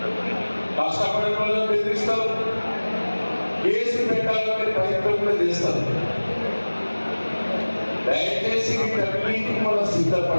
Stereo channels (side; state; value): both; inverted; correlation -1.00